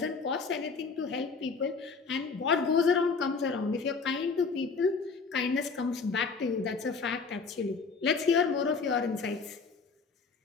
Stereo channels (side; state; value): right; quieter; 4.8 dB